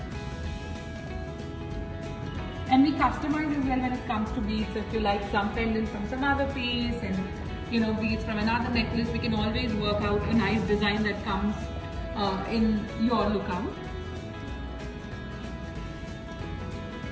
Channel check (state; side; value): identical; both; correlation 1.00